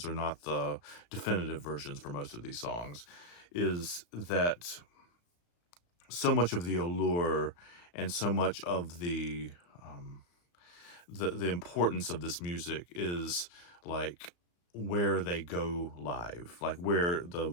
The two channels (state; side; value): late; right; 34 ms